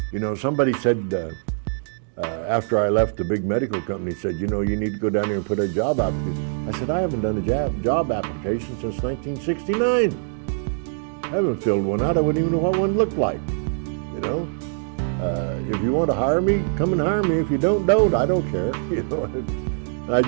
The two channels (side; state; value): left; silent; digital silence